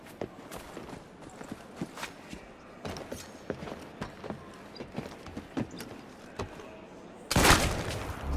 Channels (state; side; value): identical; both; correlation 1.00